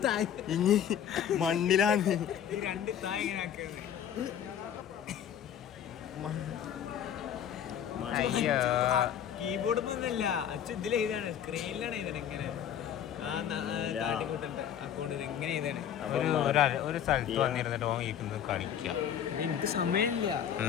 ഇനി മണ്ണിലാണ്. കീബോർഡ് ഒന്നല്ല അച്ഛൻ ഇതിലെഴുതാണ്, സ്ക്രീനിലാണ് എഴുതണേ. ഇങ്ങനെ ഒരു സ്ഥലത്ത് വന്നിരുന്നിട്ട് ഓൻ ഇരിക്കുന്നത് കളിക്കുക. എനിക്ക് സമയമില്ല.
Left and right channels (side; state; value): right; quieter; 9.4 dB